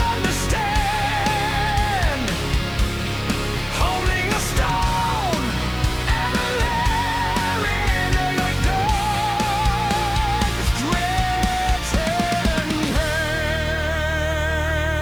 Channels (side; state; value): right; noise; hiss, 23 dB below the sound